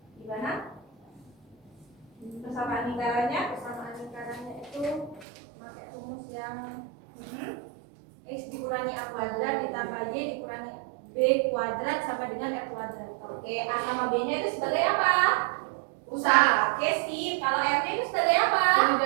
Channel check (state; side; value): drops out; left; at 5.2 s